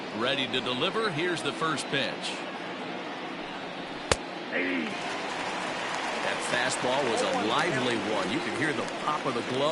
Ready to deliver. Here's the first pitch. That fastball was a lively one. You could hear the pop of the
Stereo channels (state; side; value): identical; both; correlation 1.00